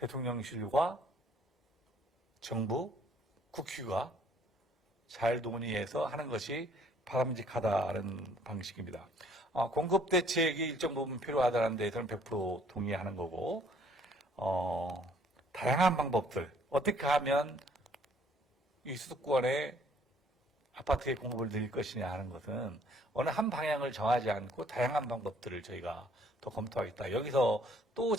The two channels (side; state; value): both; normal; correlation 0.61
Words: 정부, 국회가 잘 논의해서 하는 것이 바람직하다는 방식입니다. 공급 대책이 일정 부분 필요하다는 데에서는 100% 동의하는 거고, 다양한 방법들, 어떻게 하면 이 수도권의 아파트의 공급을 늘릴 것이냐 하는 것은 어느 한 방향을 정하지 않고 다양한 방법들을 저희가 더 검토하겠다. 여기서 또